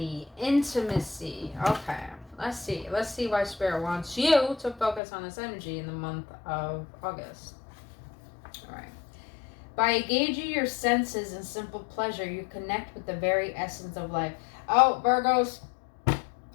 intimacy. Okay, let's see why Spirit wants you to focus on this energy in the month of August. All right. By engaging your senses in simple pleasure, you connect with the very essence of life. Oh, Virgos, I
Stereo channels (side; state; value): right; drops out; at 5.0 s